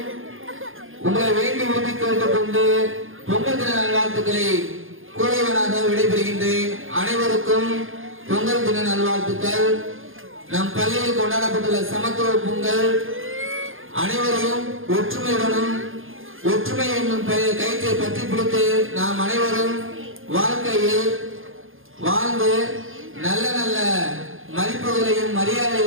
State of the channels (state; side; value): late; left; 0.59 ms